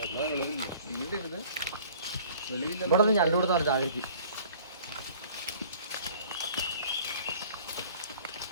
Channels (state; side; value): inverted; both; correlation -0.50